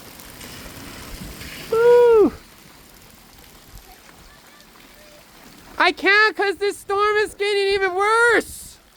Woo! I can't because this storm is getting even worse.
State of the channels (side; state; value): both; identical; correlation 1.00